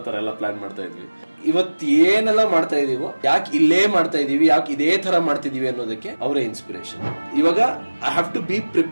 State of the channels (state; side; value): inverted; both; correlation -1.00